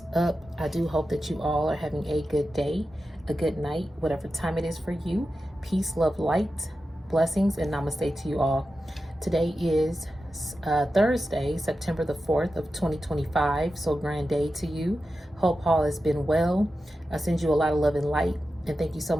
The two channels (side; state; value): both; normal; correlation 0.92